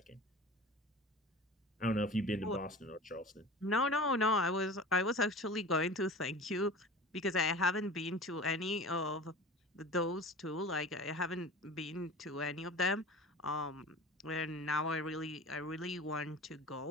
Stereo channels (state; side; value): normal; both; correlation 0.37